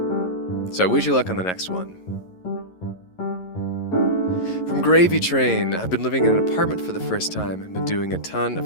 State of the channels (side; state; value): right; late; 11 ms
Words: So I wish you luck on the next one. From Gravy Train, I've been living in an apartment for the first time and been doing a ton